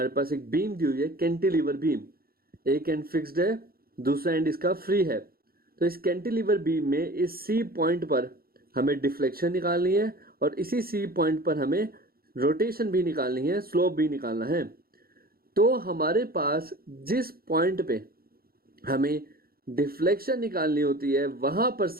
पास एक बीम दी हुई है, कैंटिलीवर बीम, एक एंड फिक्स्ड है, दूसरा एंड इसका फ्री है। तो इस कैंटिलीवर बीम में इस सी पॉइंट पर हमें डिफ्लेक्शन निकालनी है और इसी सी पॉइंट पर हमें रोटेशन भी निकालनी है, स्लोप भी निकालना है। तो हमारे पास जिस पॉइंट पे हमें डिफ्लेक्शन निकालनी होती है वहां पर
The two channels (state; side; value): late; left; 0.44 ms